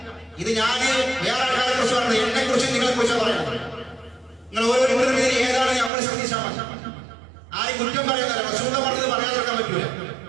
ഇത് ഞാൻ വേറെ ആൾക്കാരെ കുറിച്ച് പറഞ്ഞു, എന്നെ കുറിച്ച് നിങ്ങളെ കുറിച്ച് പറയാം. നിങ്ങൾ ഓരോരുത്തരുടെ പേര് ഏതാണ് നമ്മൾ ശ്രദ്ധിച്ചാൽ മതി. ആരും കുറ്റം പറയാനല്ല, റസൂലിനെ പറഞ്ഞത് പറയാതിരിക്കാൻ പറ്റൂല.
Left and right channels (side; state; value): left; drops out; at 5.9 s